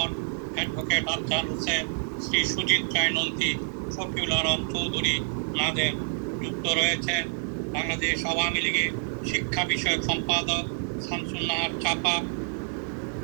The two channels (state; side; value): silent; left; 59 dB below the other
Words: অ্যাডভোকেট আফজাল হোসেন, শ্রী সুজিত রায় নন্দী, শফিউল আলম চৌধুরী নাদের। যুক্ত রয়েছেন বাংলাদেশ আওয়ামী লীগের শিক্ষা বিষয়ক সম্পাদক শামসুন নাহার চাপা,